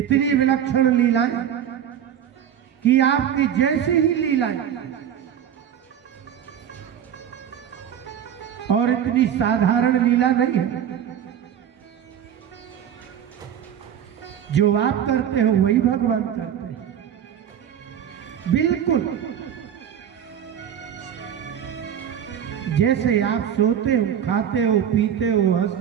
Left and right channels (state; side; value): quieter; left; 9.4 dB